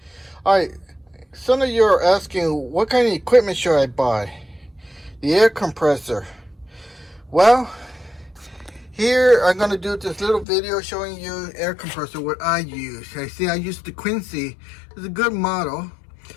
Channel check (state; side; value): drops out; right; at 10.5 s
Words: Alright, some of you are asking what kind of equipment should I buy? The air compressor. Well, here I'm going to do this little video showing you air compressor, what I use. I use the Quincy. It's a good model.